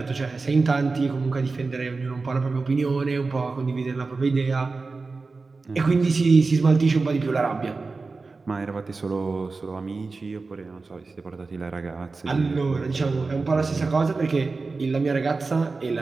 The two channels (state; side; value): quieter; left; 4.0 dB